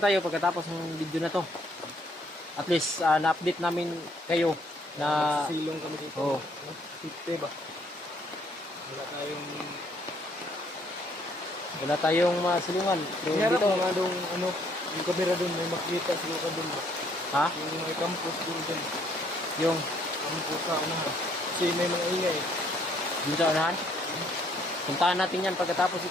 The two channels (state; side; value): normal; both; correlation 0.66